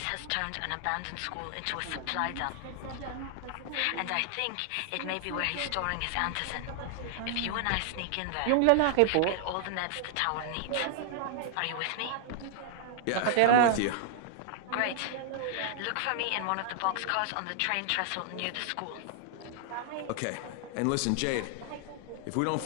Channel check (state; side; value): different; both; correlation 0.00